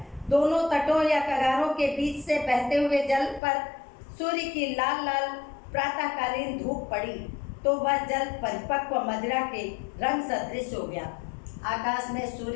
दोनों तटों या कगारों के बीच से बहते हुए जल पर सूर्य की लाल लाल प्रातःकालीन धूप पड़ी तो वह जल परिपक्व मदिरा के रंग सदृश हो गया। आकाश में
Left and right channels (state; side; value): drops out; right; at 3.4 s